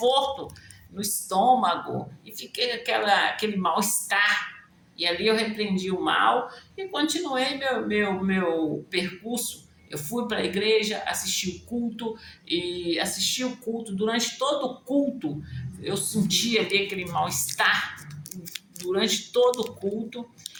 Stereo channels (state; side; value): identical; both; correlation 1.00